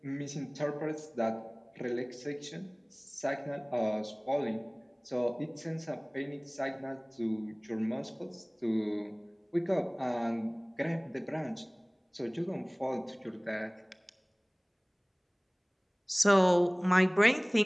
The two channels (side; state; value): both; identical; correlation 1.00